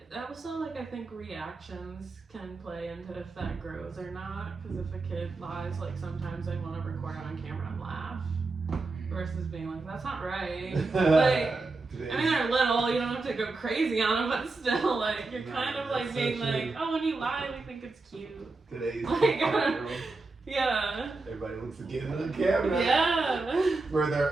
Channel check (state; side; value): quieter; left; 3.6 dB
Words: Also, like I think reactions can play into if that grows or not. Because if a kid lies, like sometimes they want to record it on camera and laugh, versus being like, "That's not right." Like, I mean, they're little, you don't have to go crazy on them, but still, like you're kind of like being like, "Oh, when you lie, we think it's cute." Today's Like, yeah. everybody wants to get on camera. Yeah. For